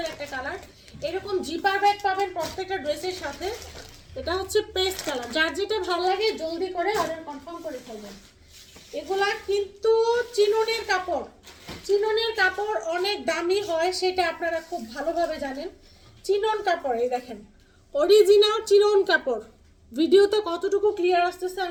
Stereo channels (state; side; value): identical; both; correlation 1.00